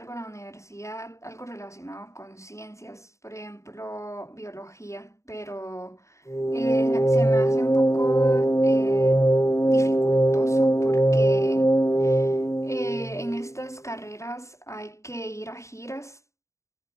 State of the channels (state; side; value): late; right; 0.14 ms